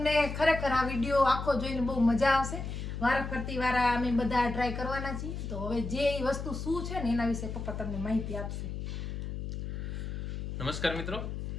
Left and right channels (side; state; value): left; noise; hum, 5 dB below the sound